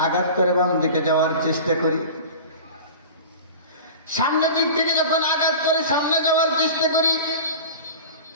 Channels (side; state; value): both; inverted; correlation -0.35